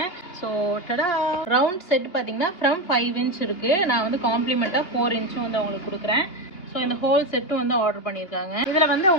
ஸோ டடா ரவுண்ட் செட் பார்த்தீங்கன்னா ஃப்ரம் 5 இன்ச் இருக்குது. நான் வந்து காம்ப்ளிமெண்ட்டாக 4 இன்ச்சும் வந்து அவங்களுக்கு கொடுக்குறேன். ஸோ இந்த ஹோல் செட்டும் வந்து ஆர்டர் பண்ணியிருக்காங்க. இதில் வந்து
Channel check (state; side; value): late; right; 2.8 ms